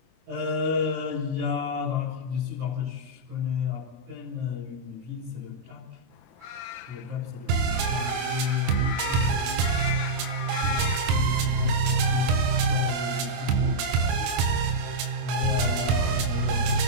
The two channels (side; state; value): left; late; 25 ms